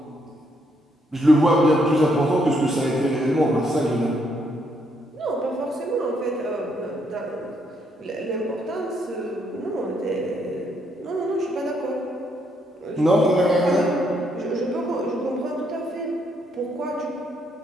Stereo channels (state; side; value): normal; both; correlation 0.74